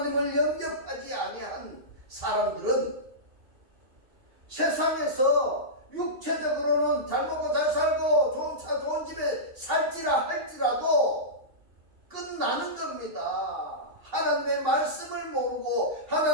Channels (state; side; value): late; left; 2.8 ms